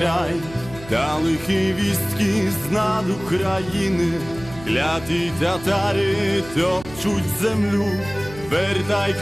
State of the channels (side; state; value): right; noise; hum, 17 dB below the sound